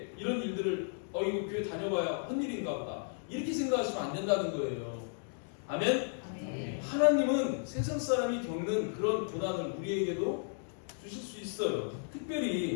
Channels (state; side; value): silent; right; digital silence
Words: 이런 일들을 이거 교회 다녀봐야 헛일인가 보다 이렇게 생각하시면 안 된다는 거예요. 아멘? 아멘. 하나님은 세상 사람이 겪는 그런 고난을 우리에게도 주실 수 있어요.